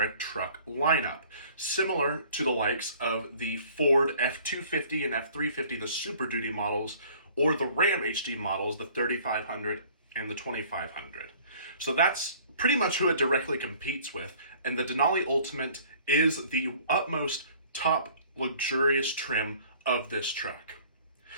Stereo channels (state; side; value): inverted; both; correlation -0.52